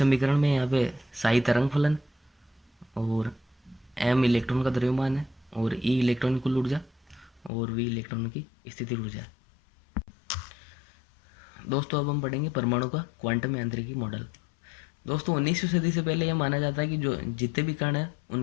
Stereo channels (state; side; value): drops out; right; at 7.5 s